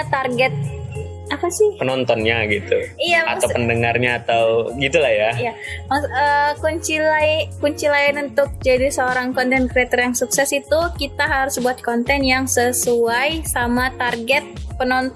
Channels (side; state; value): both; identical; correlation 1.00